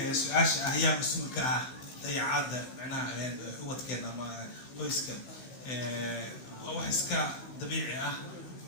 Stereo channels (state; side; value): late; right; 16 ms